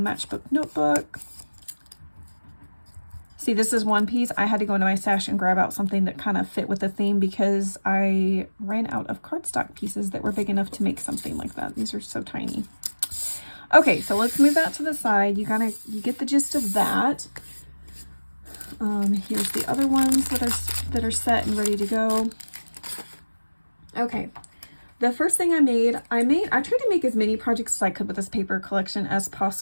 notebook. See, this is one piece. I had to go into my stash and grab out something that kind of fit with the theme because I ran out of cardstock pieces that were big enough to make something like that. These are so tiny. Okay, so let's move that to the side. You get the gist of that. Here's the other ones that are set and ready to go. Okay. The first thing I tried to make as many projects as I could with this paper collection as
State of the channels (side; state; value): both; inverted; correlation -1.00